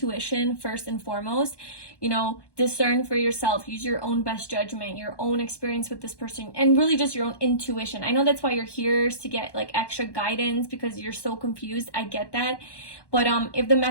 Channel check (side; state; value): right; late; 1.1 ms